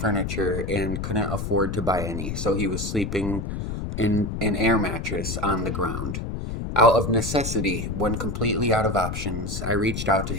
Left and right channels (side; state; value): left; noise; rumble, 4 dB below the sound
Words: and couldn't afford to buy any, so he was sleeping in an air mattress on the ground. Out of necessity, when completely out of options, I reached out to